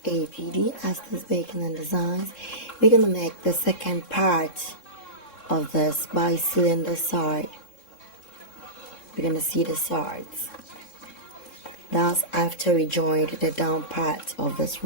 APD Aston's Bacon and Designs. We're gonna make the second part of this by sealing the side. We're gonna see the sides. That's after we joined the down part of this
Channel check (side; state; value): right; late; 3.6 ms